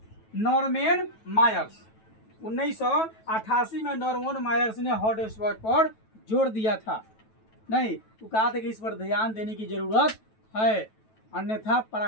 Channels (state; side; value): late; right; 9.2 ms